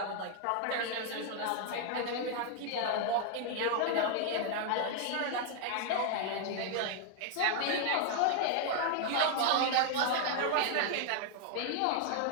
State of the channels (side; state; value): both; different; correlation 0.00